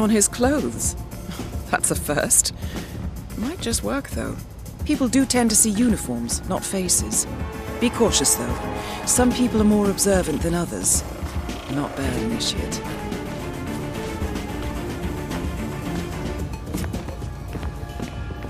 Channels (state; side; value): identical; both; correlation 1.00